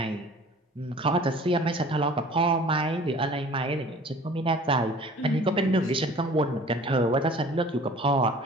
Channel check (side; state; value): both; normal; correlation 0.47